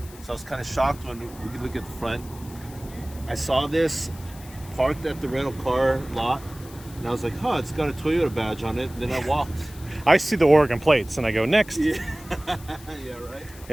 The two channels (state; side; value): noise; left; hiss, 20 dB below the sound